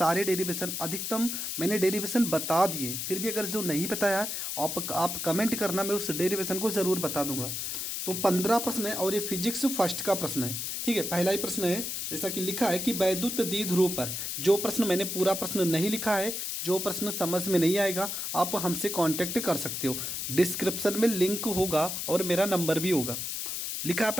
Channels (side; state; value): left; noise; hiss, 3 dB below the sound